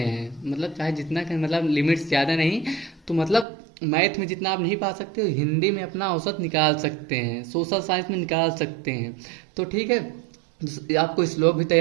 मतलब चाहे जितना मतलब लिमिट्स ज़्यादा नहीं, तो मतलब मैथ में जितना आप नहीं पा सकते हो हिंदी में अपना औसत निकाल सकते हैं, सोशल साइंस में निकाल सकते हैं। तो ठीक है, आपको श्लोक भी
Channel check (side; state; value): left; drops out; at 3.5 s